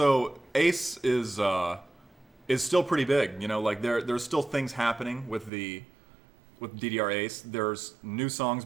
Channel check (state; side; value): drops out; left; at 5.5 s